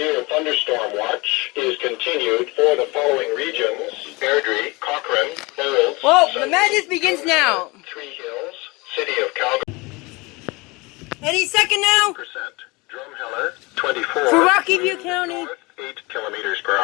thunderstorm watch is continued for the following regions: Airdrie, Cochrane, Olds. Whoa, the madness begins now. Three Hills, city of Calgary. Any second now. Drumheller, 24. For Rocky View County. 8 kilometers per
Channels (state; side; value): quieter; right; 25.0 dB